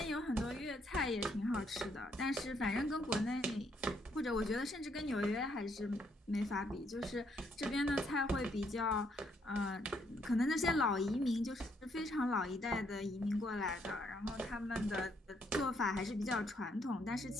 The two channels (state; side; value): normal; both; correlation 0.72